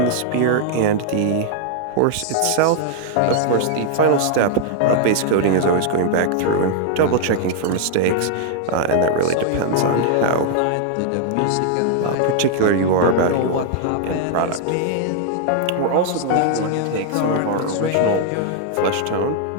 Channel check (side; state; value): both; different; correlation 0.00